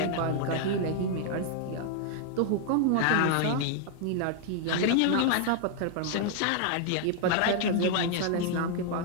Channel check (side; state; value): both; different; correlation 0.00